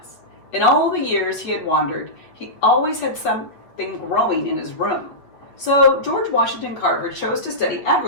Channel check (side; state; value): right; late; 8.5 ms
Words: In all the years he had wandered, he always had something growing in his room. So George Washington Carver chose to study